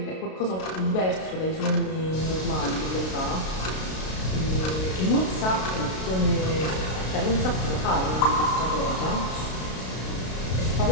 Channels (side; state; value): right; late; 32 ms